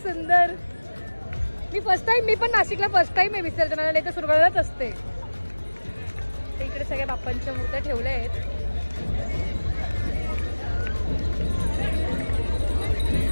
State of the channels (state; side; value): inverted; both; correlation -1.00